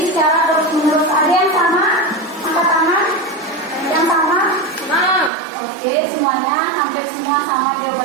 secara terus-menerus. Ada yang sama? Angkat tangan. Yang sama? Oke, semuanya, hampir semua sama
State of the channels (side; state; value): left; drops out; at 5.3 s